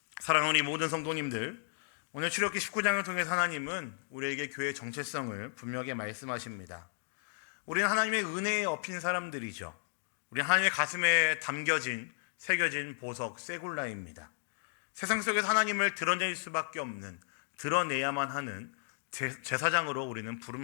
사랑하는 우리 모든 성도님들, 오늘 출애굽기 19장을 통해서 하나님은 우리에게 교회의 정체성을 분명하게 말씀하십니다. 우리는 하나님의 은혜에 엎인 사람들이죠. 우리는 하나님의 가슴에 새겨진 보석, 세굴라입니다. 세상 속에서 하나님을 드러낼 수밖에 없는, 드러내야만 하는 제사장으로 우리는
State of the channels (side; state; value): right; silent; digital silence